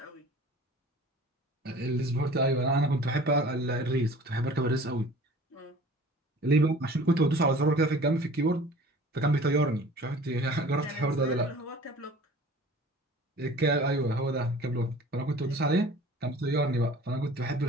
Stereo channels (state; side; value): normal; both; correlation 0.45